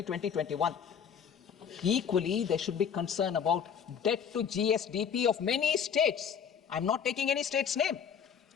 Equally, there should be concern about debt to GSDP of many states. I'm not taking any state's name,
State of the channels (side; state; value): right; quieter; 7.5 dB